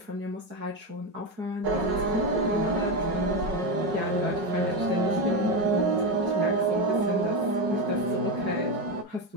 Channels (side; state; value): left; late; 4.8 ms